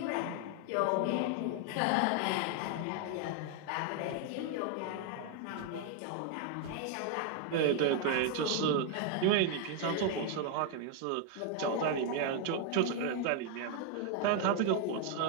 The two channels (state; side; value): different; both; correlation 0.00